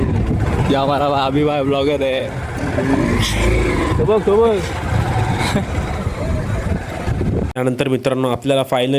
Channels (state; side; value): identical; both; correlation 1.00